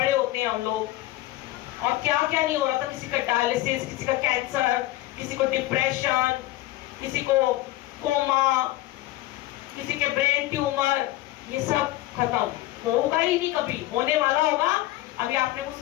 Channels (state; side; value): quieter; right; 16.4 dB